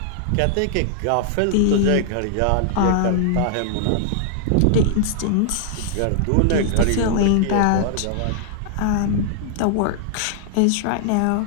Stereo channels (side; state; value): both; different; correlation -0.01